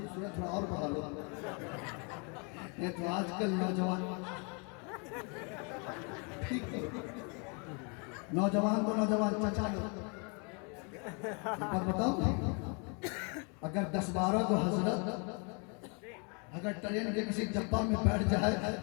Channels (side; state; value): right; quieter; 35.2 dB